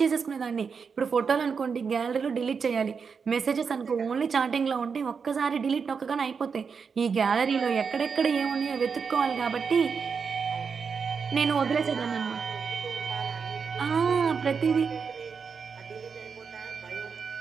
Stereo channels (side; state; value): left; quieter; 5.8 dB